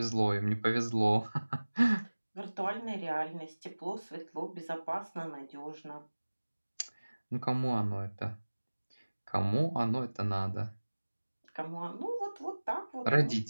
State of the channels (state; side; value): inverted; both; correlation -1.00